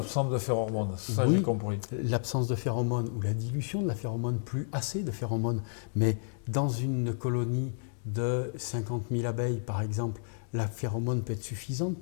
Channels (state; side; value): silent; right; digital silence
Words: de phéromones, ça oui, j'ai compris. L'absence de phéromones ou la dilution de la phéromone, plus assez de phéromones. Mais dans une colonie de 50 000 abeilles, par exemple, la phéromone peut être suffisante